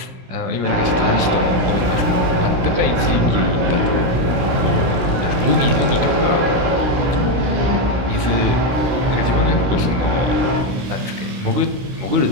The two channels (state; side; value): late; left; 17 ms